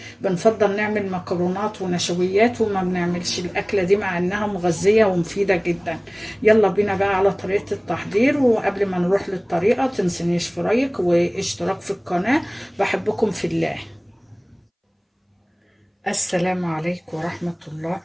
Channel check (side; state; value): both; identical; correlation 1.00